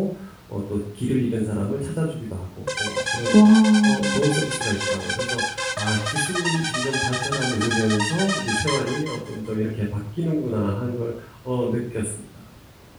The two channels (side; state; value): both; identical; correlation 1.00